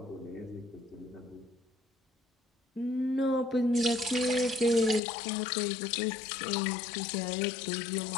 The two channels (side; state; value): right; drops out; at 5.0 s